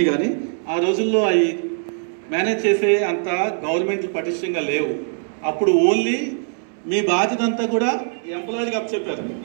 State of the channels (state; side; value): silent; left; 64 dB below the other